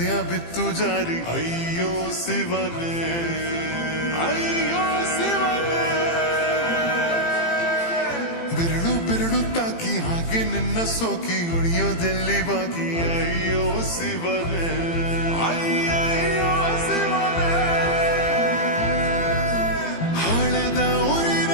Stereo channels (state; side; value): late; right; 18 ms